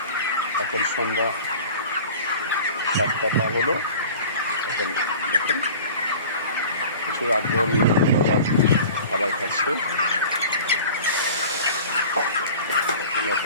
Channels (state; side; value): inverted; both; correlation -0.41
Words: এখন সন্ধ্যা 7টা পার হলো। এখন দেখেন প্রচুর আগ্রহ নিয়ে খাবার খাচ্ছে।